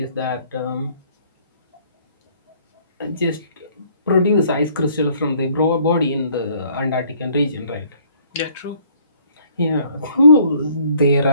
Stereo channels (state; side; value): inverted; both; correlation -0.60